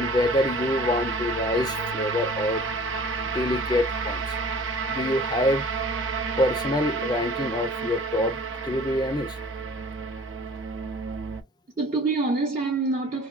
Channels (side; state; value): both; normal; correlation 0.47